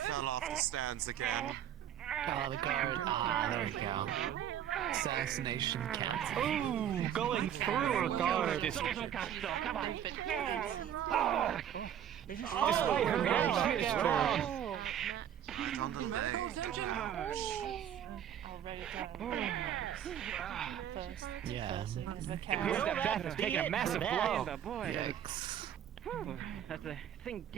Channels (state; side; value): quieter; left; 10.0 dB